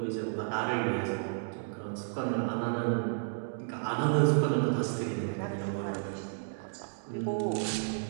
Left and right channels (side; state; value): left; silent; digital silence